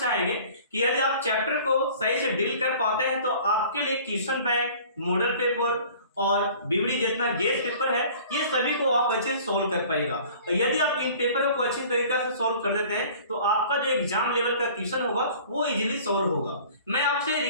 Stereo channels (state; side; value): inverted; both; correlation -0.48